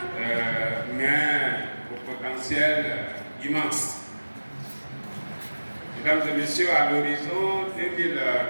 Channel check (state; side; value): inverted; both; correlation -1.00